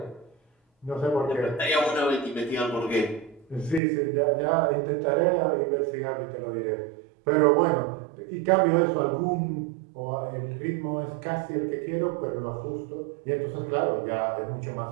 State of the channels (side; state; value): left; drops out; at 3.8 s